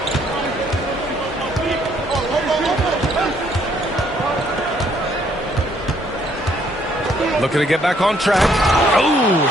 Looking to get back on track. Oh,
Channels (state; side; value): normal; both; correlation 0.67